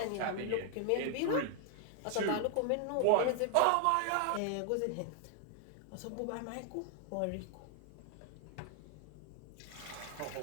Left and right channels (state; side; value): different; both; correlation 0.00